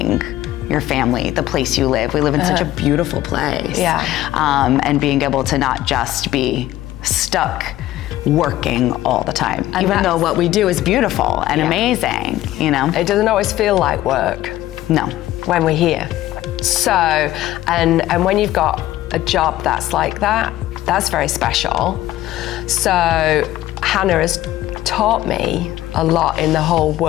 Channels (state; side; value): quieter; right; 14.7 dB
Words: your family, the place you live. We live in such a beautiful place. Yeah. And being able to not just be stuck working all the time, and even though what we do is beautiful and amazing, you know? It doesn't always feel like work. No. When we're here. So, and when you've got a job that's like that, that's very special. So Hannah has taught me a lot in the whole